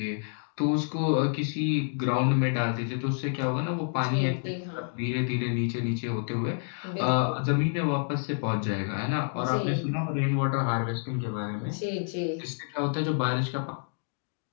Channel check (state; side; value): silent; right; digital silence